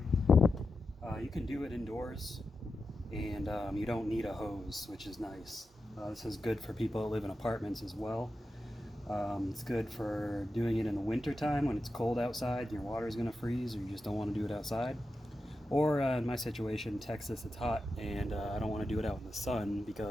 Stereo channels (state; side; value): normal; both; correlation 0.90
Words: You can do it indoors, and you don't need a hose, which is nice. This is good for people that live in apartments as well. It's good for doing it in the winter time when it's cold outside and your water is going to freeze or you just don't want to do it outside. Or in my situation, Texas, it's hot and I don't want to do it out in the sun